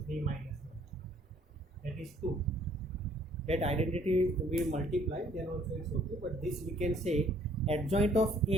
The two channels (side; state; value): both; normal; correlation 0.61